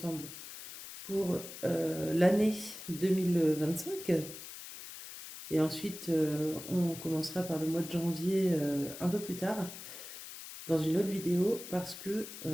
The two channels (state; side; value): noise; left; hiss, 12 dB below the sound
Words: pour l'année 2025. Et ensuite, on commencera par le mois de janvier un peu plus tard, dans une autre vidéo, parce que